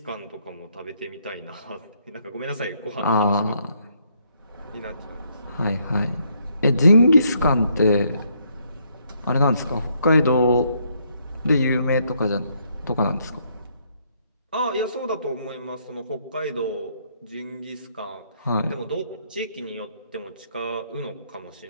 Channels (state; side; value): inverted; both; correlation -0.72